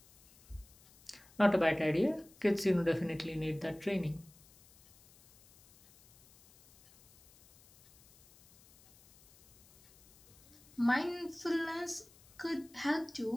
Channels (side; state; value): left; noise; hiss, 27 dB below the sound